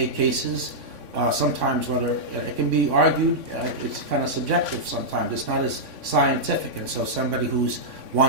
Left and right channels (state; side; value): late; left; 3.6 ms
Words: cases, sometimes whether it can be argued, it's kind of subjective sometimes. It's not as scientific, and so somebody who